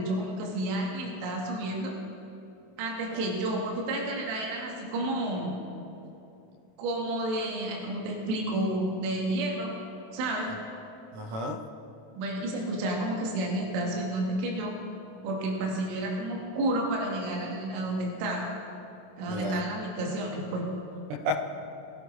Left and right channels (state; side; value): late; left; 27 ms